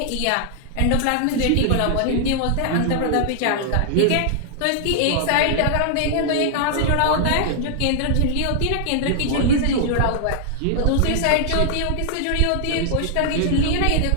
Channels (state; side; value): different; both; correlation 0.00